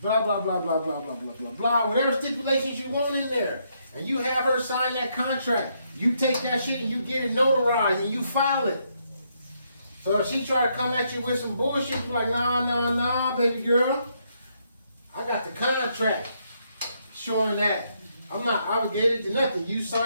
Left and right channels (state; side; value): inverted; both; correlation -0.75